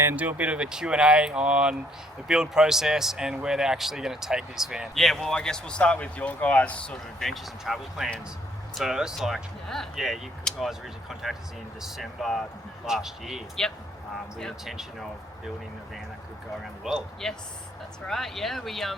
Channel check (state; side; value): normal; both; correlation 0.65